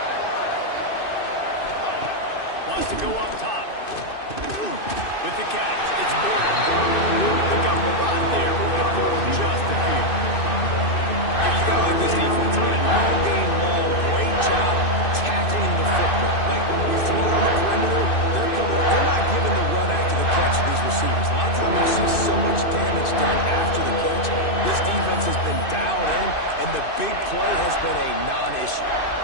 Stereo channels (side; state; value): right; late; 2.6 ms